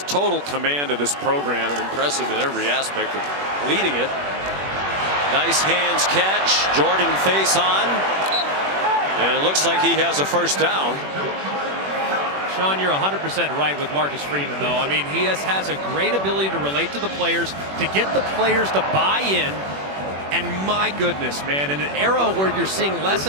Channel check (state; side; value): late; left; 21 ms